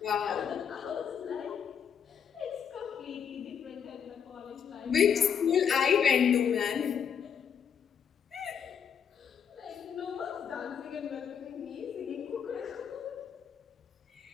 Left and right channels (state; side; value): quieter; right; 7.6 dB